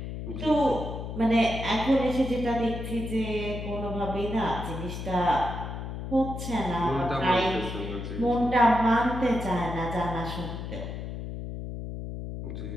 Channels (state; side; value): noise; left; hum, 7 dB below the sound